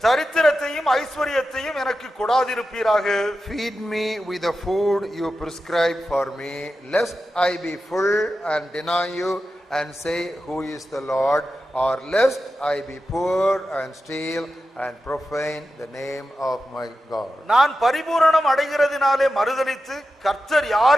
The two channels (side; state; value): both; normal; correlation 0.91